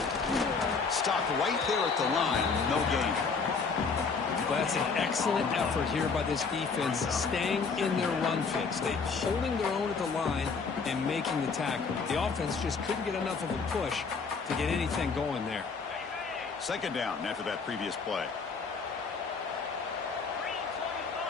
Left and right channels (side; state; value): right; quieter; 5.0 dB